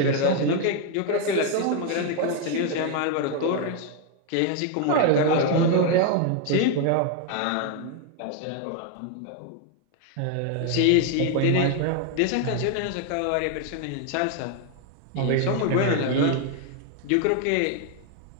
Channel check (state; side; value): different; both; correlation 0.01